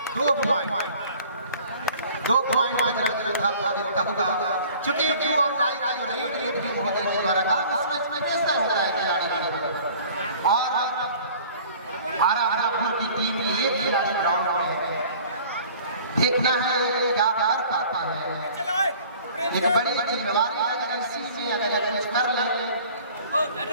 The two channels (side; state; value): both; inverted; correlation -0.49